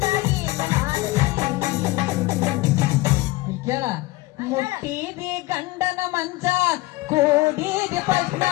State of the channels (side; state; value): right; quieter; 19.8 dB